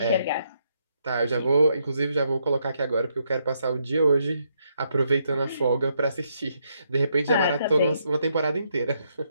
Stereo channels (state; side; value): inverted; both; correlation -0.76